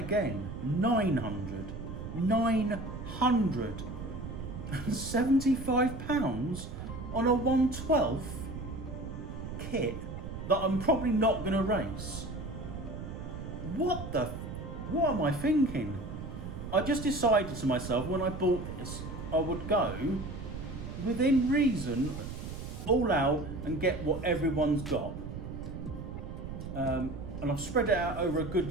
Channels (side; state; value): right; noise; rumble, 8 dB below the sound